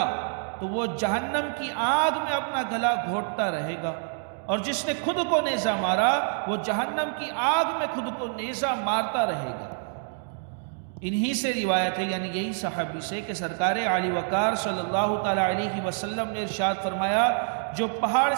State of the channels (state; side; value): silent; left; 60 dB below the other